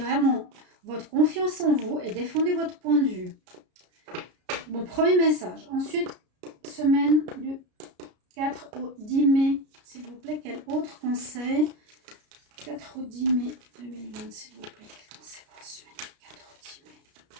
votre confiance en vous et défendez votre point de vue. Bon, premier message. Ensuite, semaine du 4 au 10 mai, s'il vous plaît, quel autre conseil? 4 au 10 mai 2020, s'il vous plaît, quel conseil pour la semaine?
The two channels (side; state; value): left; late; 33 ms